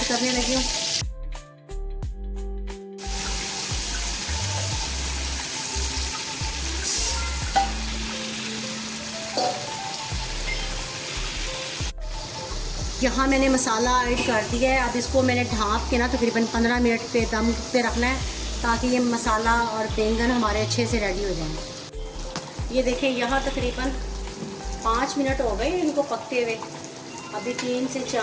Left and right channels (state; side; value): identical; both; correlation 1.00